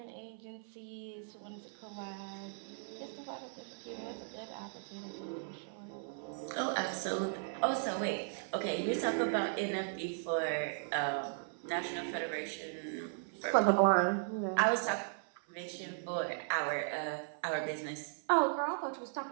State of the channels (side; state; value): left; silent; 53 dB below the other